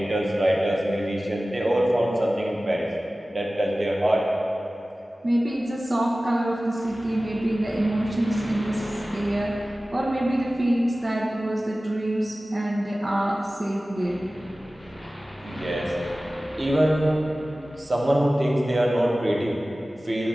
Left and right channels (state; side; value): normal; both; correlation 0.97